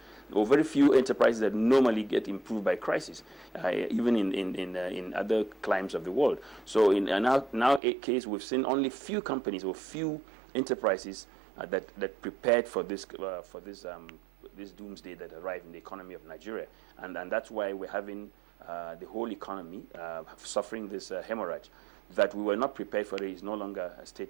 or very few enterprises that normally get improved by crisis, even in other climes of the world. So in our case, we've seen only few companies or few enterprises that prepared for this doomsday that arrived in the economy of Nigeria, and that's why we're having the whole economy suffering this hemorrhage. That we were not prepared for it is no longer a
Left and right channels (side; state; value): left; drops out; at 7.8 s